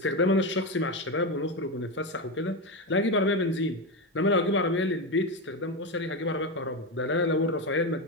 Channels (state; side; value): normal; both; correlation 0.13